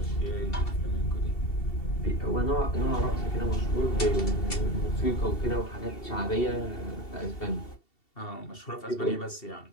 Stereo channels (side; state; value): right; late; 2.7 ms